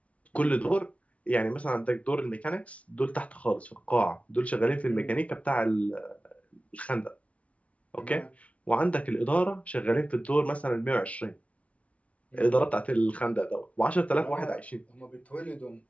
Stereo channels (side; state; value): right; late; 0.065 ms